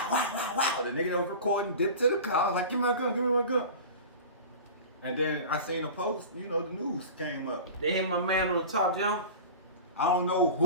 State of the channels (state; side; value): inverted; both; correlation -0.34